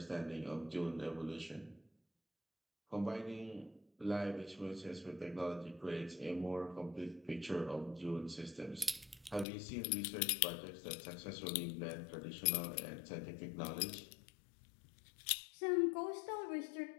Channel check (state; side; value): drops out; right; at 9.5 s